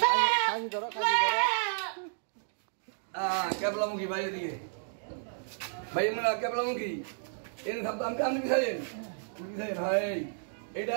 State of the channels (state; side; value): silent; left; digital silence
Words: কেবলামুখী বাইরে দিকে ভাই মানে কেবলামুখী এনে থাকতো আমি আপনি বিছাইন ভাই এটা